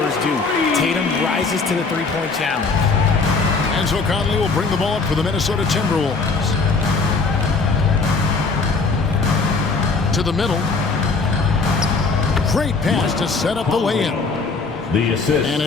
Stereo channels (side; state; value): right; quieter; 4.2 dB